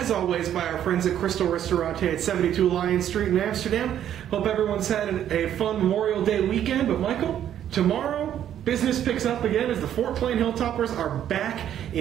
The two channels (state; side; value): quieter; left; 10.5 dB